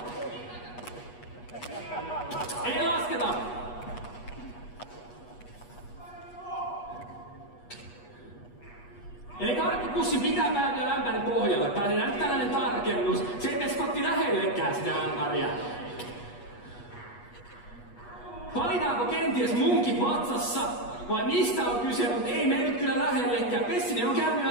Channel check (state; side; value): late; right; 8.3 ms